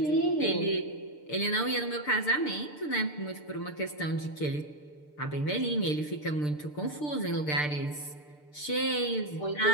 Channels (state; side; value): late; right; 6.7 ms